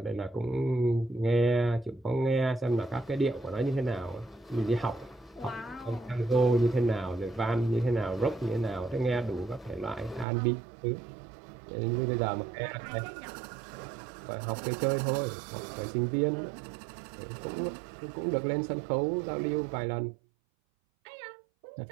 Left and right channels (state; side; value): drops out; left; at 10.2 s